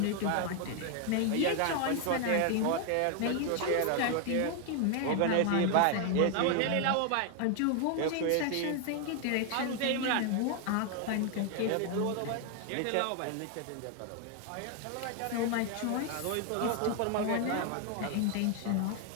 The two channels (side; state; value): both; different; correlation 0.00